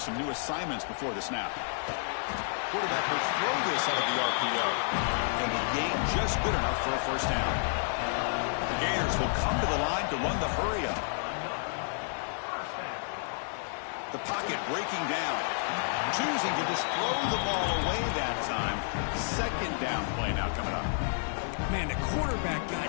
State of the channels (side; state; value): right; silent; digital silence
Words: some new assignments before the snap. Quarterback will throw this out of the RPO. And the gain just good enough for a first down. The Gators will come to the line to run the hurry up. The pocket breaking down. Choosing to just throw the ball away that time. Second down play now coming up. Man, the quarterback